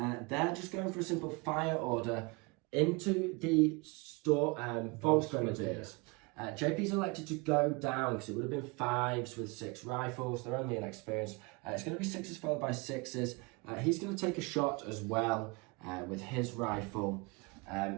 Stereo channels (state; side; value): quieter; left; 28.3 dB